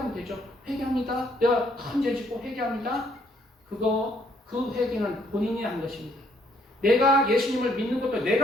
되죠. 회개합니다. 내가 큰 죄 짓고 회개합니다. 그 회개는 본인이 한 것입니다. 내가 예수님을 믿는 것도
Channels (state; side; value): normal; both; correlation 0.68